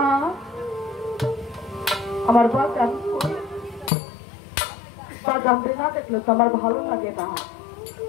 আমার বাজান বাজানতে না দেখলে তো আমার ভালো লাগে না।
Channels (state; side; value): drops out; right; at 3.9 s